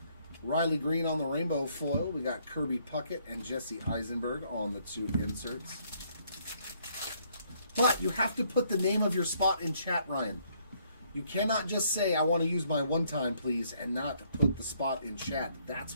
Riley Green on the rainbow foil. We got Kirby Puckett and Jesse Eisenberg on the 2 inserts. But you have to put the name of your spot in chat, Ryan. You cannot just say, I want to use my 1-time, please, and not put the spot in chat.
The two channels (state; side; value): inverted; both; correlation -0.68